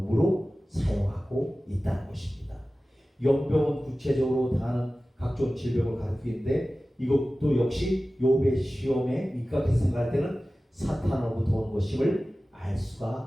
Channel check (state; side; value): normal; both; correlation 0.96